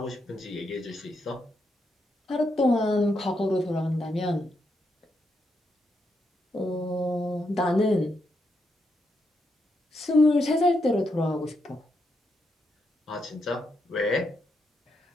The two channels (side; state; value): both; normal; correlation 0.81